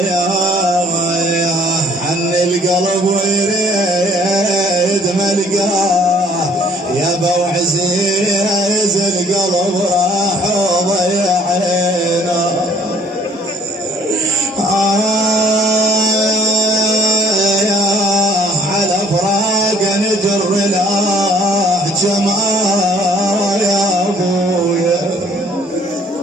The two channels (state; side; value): normal; both; correlation 0.58